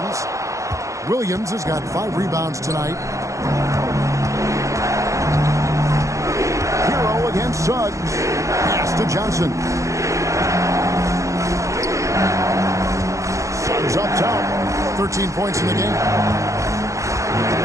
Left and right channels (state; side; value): late; left; 0.15 ms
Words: Williams has got 5 rebounds tonight. Hero against Suggs. Pass to Johnson. Suggs up top. 13 points in the game.